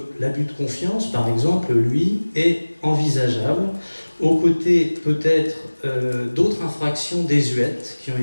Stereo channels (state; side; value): inverted; both; correlation -1.00